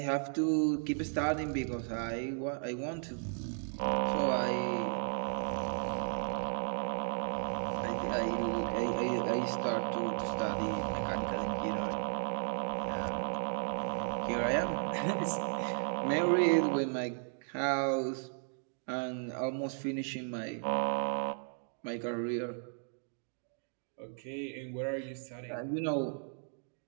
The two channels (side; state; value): left; silent; 54 dB below the other